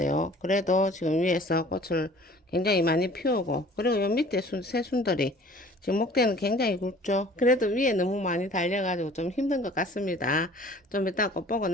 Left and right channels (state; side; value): normal; both; correlation 0.50